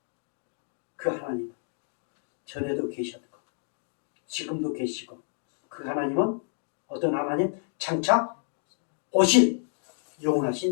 그 하나님 전에도 계셨고 지금도 계시고 그 하나님은 어떤 하나님? 장차 오실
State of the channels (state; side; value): silent; right; digital silence